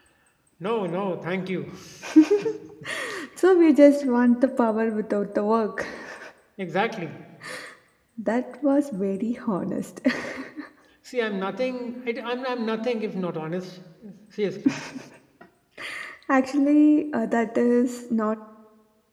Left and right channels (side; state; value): both; identical; correlation 1.00